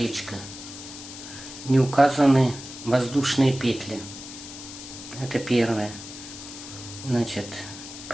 не указаны воздушные петли. Это первое. Значит,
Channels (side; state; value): left; noise; hiss, 12 dB below the sound